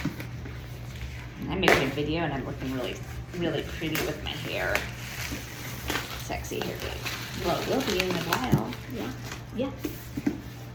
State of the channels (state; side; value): identical; both; correlation 1.00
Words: I'm making a video and I'm looking really, really pretty with my hair. Sexy hair day. Well, it will be in a while. Yeah. Yeah.